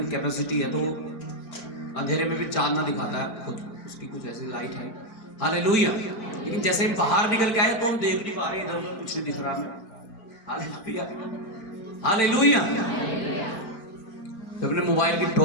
कैपेसिटी है, तो अंधेरे में भी चांदना दिखाता है खुद, उसकी कुछ ऐसी लाइट है। हालेलुया। लेकिन जैसे हम बाहर निकल के आए तो हम देख नहीं पा रहे, इधर उधर कुछ नहीं दिख रहा हमें। Hallelujah, hallelujah. जब हमने मोबाइल की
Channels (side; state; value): right; late; 4.5 ms